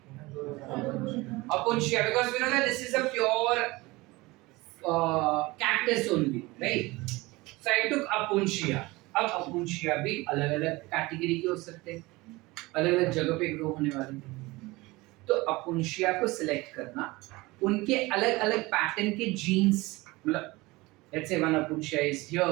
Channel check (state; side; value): quieter; left; 21.8 dB